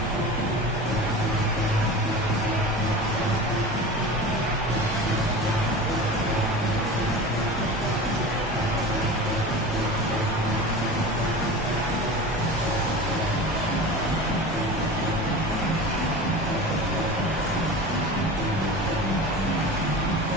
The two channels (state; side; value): normal; both; correlation 0.33